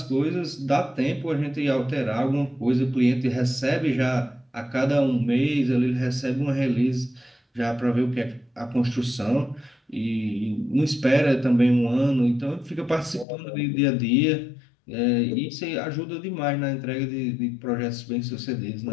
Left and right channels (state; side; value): drops out; right; at 13.2 s